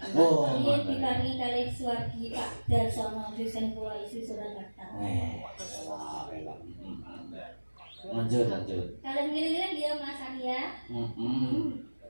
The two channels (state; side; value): inverted; both; correlation -1.00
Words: Oh, Ini diparingi kalih Suwargi Pak Darsono dosen kula isi Surakarta. Lanjut. Kalian gini-gini dia Mas Arya.